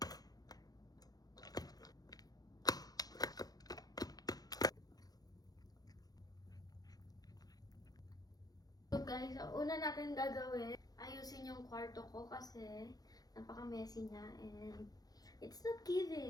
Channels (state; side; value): late; right; 0.19 ms